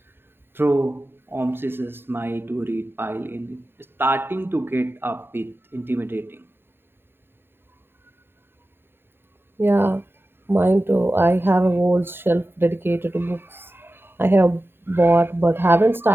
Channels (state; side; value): late; left; 0.11 ms